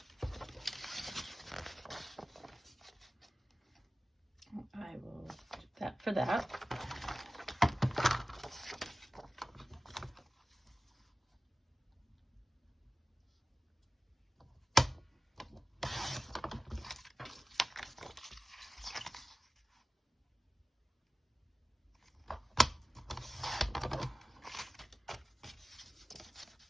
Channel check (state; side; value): normal; both; correlation 0.97